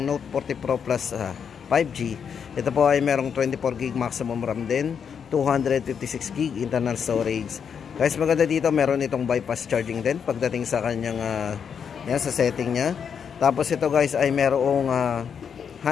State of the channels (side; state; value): right; quieter; 7.1 dB